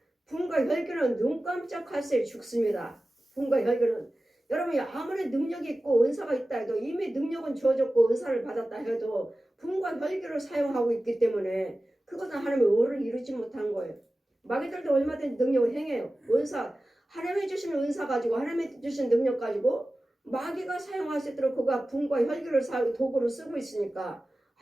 붕과 혈기는 눈 깜짝할 새에 죽습니다. 붕과 혈기는 여러분이 아무리 능력이 있고 은사가 있다 해도 이미 능력은 주어졌고 은사를 받았다 해도 붕과 혈기를 사용하고 있기 때문에 그것은 하나님의 의를 이루지 못한 거예요. 마귀들도 얼마든지 능력을 행해요. 은사, 하나님이 주시는 은사 가지고 하나님이 주신 능력 가지고 마귀가 사용할 수 있도록 그가 붕과 혈기를 도구로 쓰고 있으니까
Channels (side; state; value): both; normal; correlation 0.96